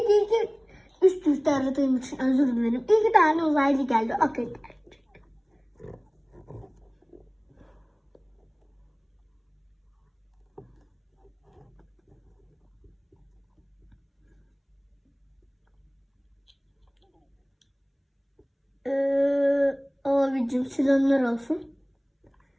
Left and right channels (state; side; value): identical; both; correlation 1.00